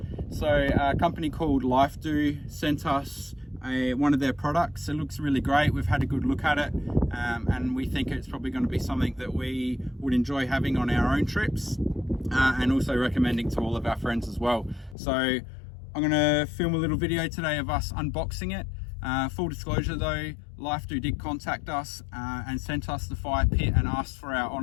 So a company called Lifedoo sent us one of their products. It looks really great. We've had a good look at it and we think it's probably going to be something that we would enjoy having on our own trips and also recommending to all of our friends as well. So I'm going to film a little video today of us unboxing it. Full disclosure though, Lifedoo did contact us and sent us the fire pit and asked for our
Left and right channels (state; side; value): drops out; right; at 15.0 s